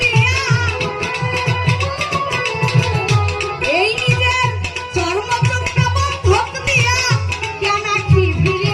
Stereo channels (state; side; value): identical; both; correlation 1.00